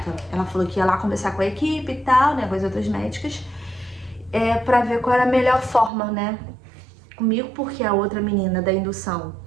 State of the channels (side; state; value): left; drops out; at 5.9 s